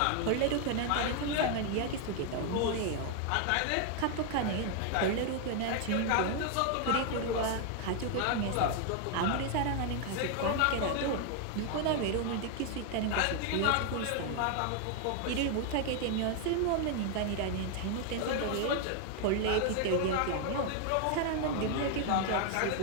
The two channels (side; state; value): both; different; correlation 0.00